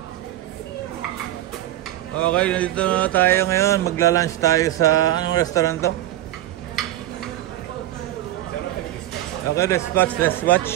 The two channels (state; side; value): quieter; left; 14.2 dB